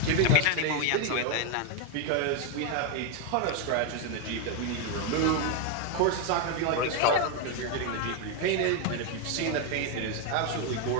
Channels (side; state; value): both; different; correlation 0.02